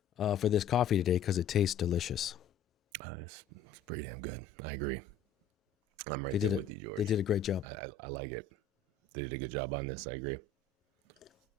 for this coffee today because it tastes delicious. It's pretty damn good. I agree. I'm right there with you, George. They did a great job. I like it. They did a good job on this. I agree.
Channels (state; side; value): quieter; right; 5.1 dB